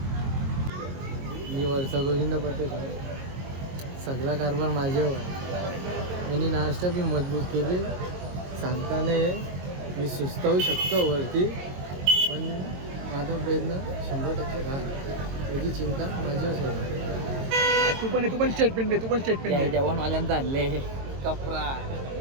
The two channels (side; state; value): left; late; 22 ms